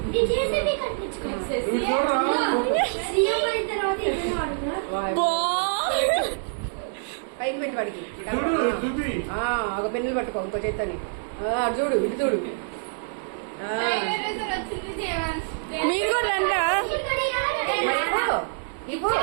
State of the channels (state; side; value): silent; left; digital silence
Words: పైకి పెట్టి వాడికి ఒక పెన్నులు పట్టుకో ఇంకో చేతని. చూడు ఇటు చూడు. మీరు కూడా